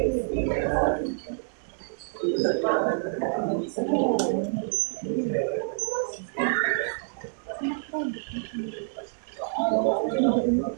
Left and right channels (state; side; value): silent; left; digital silence